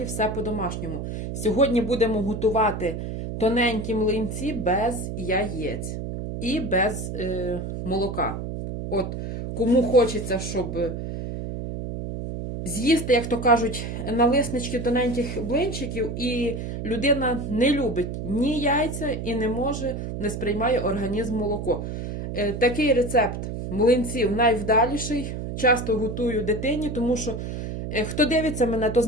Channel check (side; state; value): right; noise; hum, 5 dB below the sound